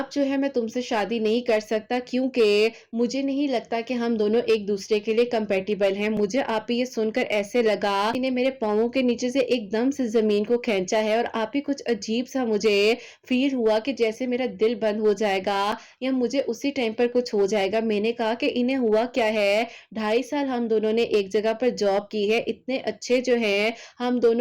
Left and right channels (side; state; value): both; identical; correlation 1.00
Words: جو ہے میں تم سے شادی نہیں کر سکتا، کیونکہ مجھے نہیں لگتا کہ ہم دونوں ایک دوسرے کے لیے کمپیٹیبل ہیں۔ مجھے آپ ہی یہ سن کر ایسے لگا انہیں میرے پاؤں کے نیچے سے ایک دم سے زمین کو کھینچا ہے، اور آپ ہی کچھ عجیب سا مجھے فیل ہوا کہ جیسے میرا دل بند ہو جائے گا یا مجھے اسی ٹائم پر کچھ ہو جائے گا۔ میں نے کہا کہ انہیں ہوا کیا ہے، 2.5 سال ہم دونوں نے ایک جگہ پر جاب کی ہے، اتنے اچھے جو ہیں ہم